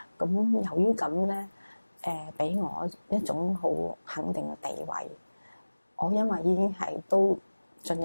咁由於咁咧，俾我一種好肯定嘅地位。我因為已經係都進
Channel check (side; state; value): both; inverted; correlation -1.00